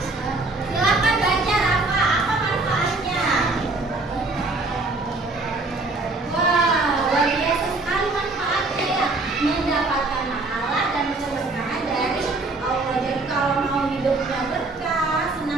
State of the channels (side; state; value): left; quieter; 3.3 dB